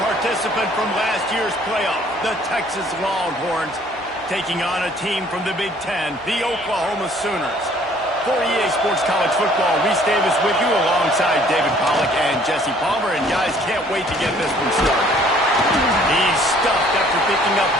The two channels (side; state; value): both; normal; correlation 0.58